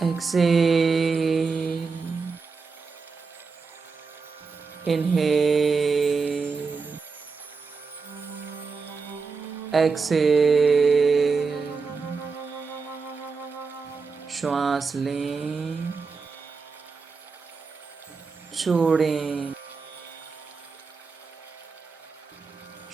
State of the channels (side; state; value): left; quieter; 4.8 dB